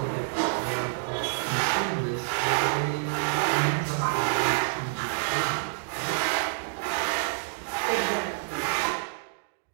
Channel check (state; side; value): silent; left; digital silence